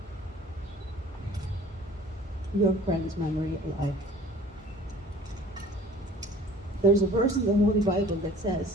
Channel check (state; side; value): normal; both; correlation 0.48